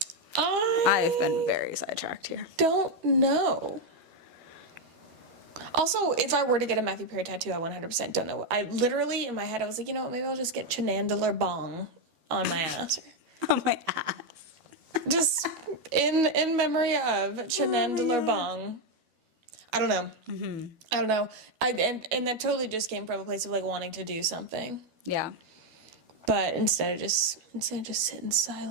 I've been very sidetracked here. Don't know. Also, if I were to get a Matthew Perry tattoo, I 100% don't know. I literally, in my head, I was like, you know what, maybe I'll just get Chenandeler Bong on my ass. On my ass. Just in memory of Chenandeler Bong. I don't know. Mm-hmm. I don't know. And that totally just came from a place of like wanting to do something. Yeah. But instead of just sit in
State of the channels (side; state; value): left; late; 12 ms